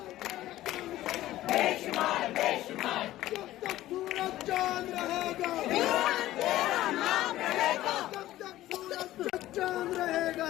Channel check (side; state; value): right; quieter; 15.0 dB